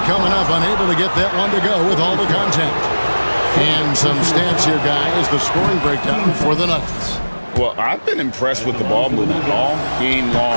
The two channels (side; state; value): both; inverted; correlation -1.00